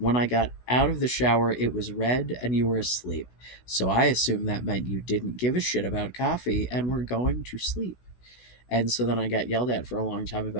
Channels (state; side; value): late; right; 16 ms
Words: I got out of the shower, it was read and you were asleep. So I assumed that meant you didn't give a shit about coffee and were going to sleep. And so then I got yelled at for a long time